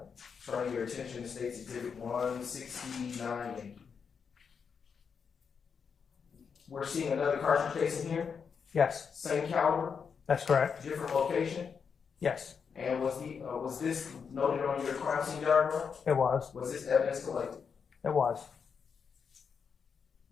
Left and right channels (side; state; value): right; quieter; 6.3 dB